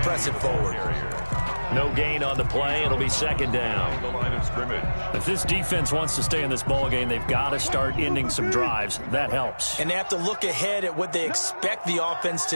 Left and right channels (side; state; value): both; inverted; correlation -1.00